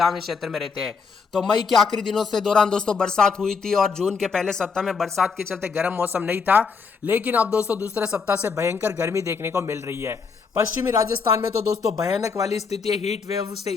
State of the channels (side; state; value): right; quieter; 5.3 dB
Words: क्षेत्र में रहते हैं। तो मई के आखिरी दिनों से दौरान दोस्तों बरसात हुई थी और जून के पहले सप्ताह में बरसात के चलते गर्म मौसम नहीं था, लेकिन अब दोस्तों दूसरे सप्ताह से भयंकर गर्मी देखने को मिल रही है। पश्चिमी राजस्थान में तो दोस्तों भयानक वाली स्थिति है। हीट वेव से